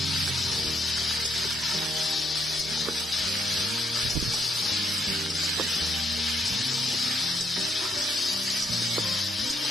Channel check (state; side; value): normal; both; correlation 0.74